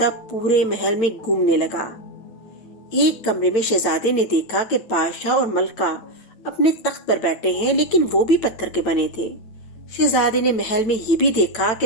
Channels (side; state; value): right; late; 9.0 ms